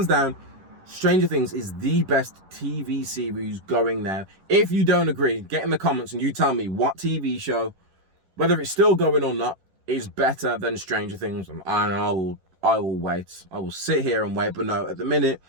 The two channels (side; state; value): left; late; 11 ms